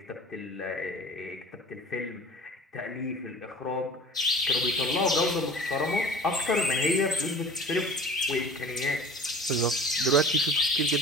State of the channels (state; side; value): normal; both; correlation 0.43